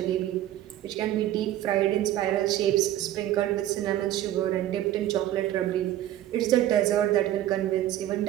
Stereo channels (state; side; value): quieter; left; 13.2 dB